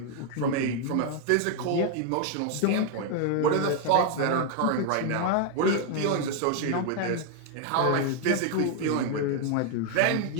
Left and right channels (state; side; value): different; both; correlation 0.00